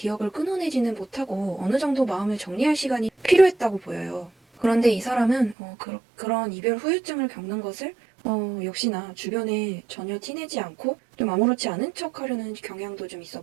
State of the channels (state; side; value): drops out; left; at 5.6 s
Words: 끊어내지는 못하고 어느 정도 마음을 정리할 시간이 필요했다고 보여요. 그런데 이 사람은 그런 이별 후유증을 겪는 것을 역시나 주변에 전혀 티내지 않고 좀 아무렇지 않은 척 하려는 경향도 좀 있어